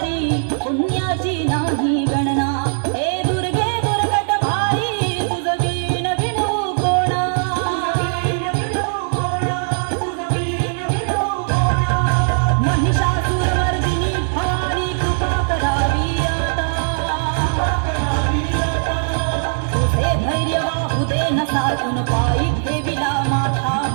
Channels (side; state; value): left; silent; 66 dB below the other